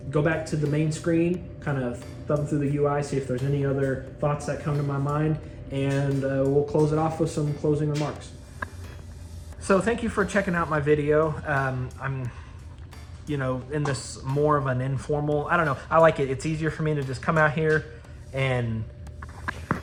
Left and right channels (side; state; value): both; identical; correlation 1.00